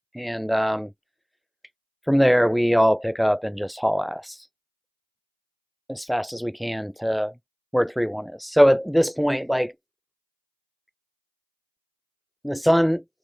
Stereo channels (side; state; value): both; identical; correlation 1.00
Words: and from there we all pick up and just haul ass as fast as we can to where 3-1 is. So at this point, like, the sun